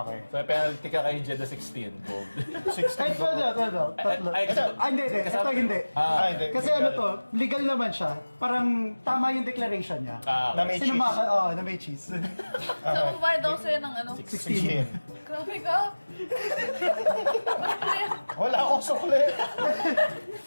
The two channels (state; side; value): inverted; both; correlation -1.00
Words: So, may penalty ka kay Jeddah 16. Gold. 16 Kahit ko. tatlo. Ay, kasi... Hindi. Ito hindi. Hindi. Kasi ano to, legal naman siya. Parang tama yung declaration niya. Na may cheese. Sinumaka, na may cheese. So, kumpara daw sa'yo ng ano? 16. Grabe ka. Wala akong sukli.